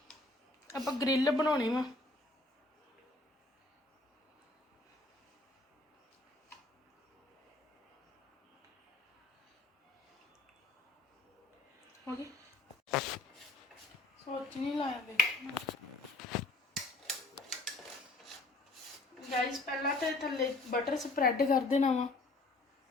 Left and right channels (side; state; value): right; quieter; 3.0 dB